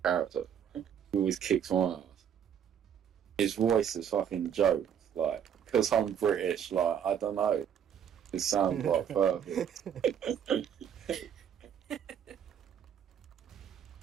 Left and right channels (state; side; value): quieter; left; 8.6 dB